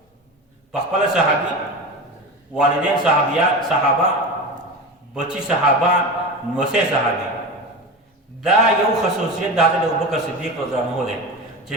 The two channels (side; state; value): both; normal; correlation 0.26